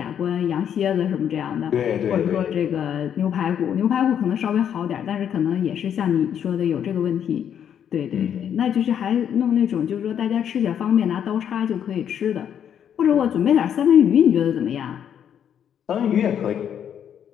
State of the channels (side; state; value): right; quieter; 9.0 dB